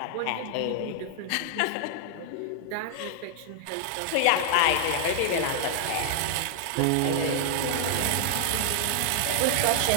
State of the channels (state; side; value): different; both; correlation 0.00